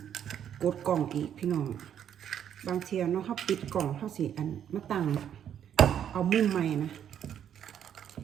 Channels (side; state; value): left; quieter; 9.4 dB